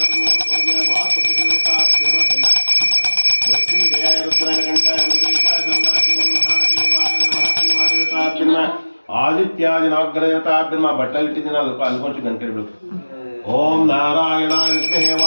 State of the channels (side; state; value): both; inverted; correlation -1.00